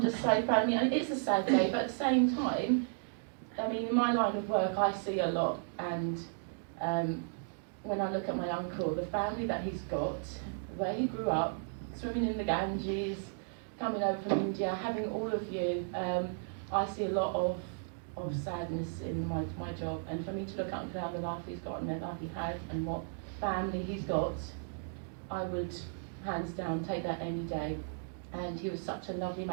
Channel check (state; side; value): silent; left; digital silence